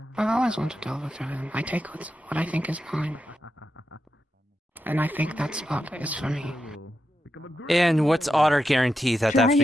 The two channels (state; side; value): normal; both; correlation 0.87